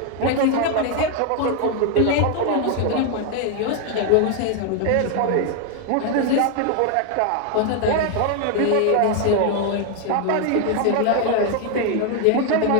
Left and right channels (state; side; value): different; both; correlation 0.00